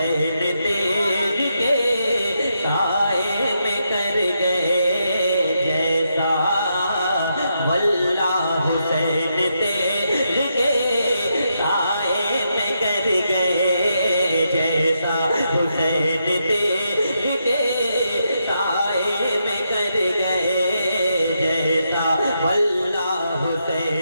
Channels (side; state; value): both; inverted; correlation -0.82